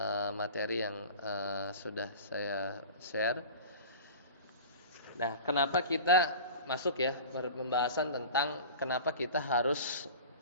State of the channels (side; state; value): both; inverted; correlation -0.36